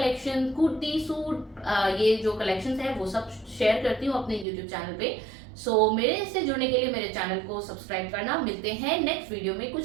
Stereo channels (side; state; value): left; drops out; at 4.5 s